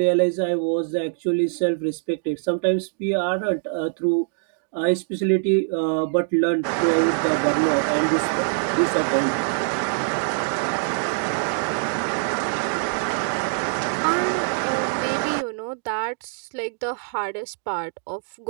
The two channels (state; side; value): silent; left; digital silence